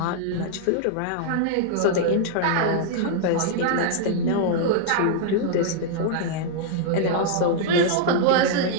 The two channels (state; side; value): different; both; correlation -0.02